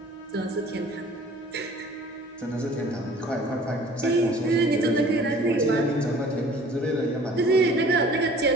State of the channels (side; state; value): both; normal; correlation 0.49